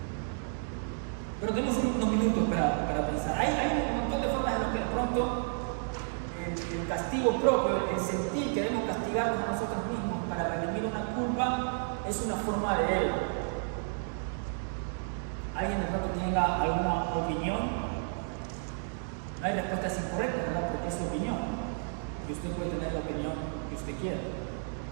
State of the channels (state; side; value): silent; left; 57 dB below the other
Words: Pero tenemos unos minutos para pensar. Hay un montón de formas en las que de pronto el castigo propio, el sentir que debemos castigarnos a nosotros mismos para redimir una culpa, es una forma de ego. ¿Alguien de pronto tenga alguna opinión? No hay respuestas incorrectas, ¿verdad? Porque es su opinión. Y usted puede tener la opinión que usted quiera.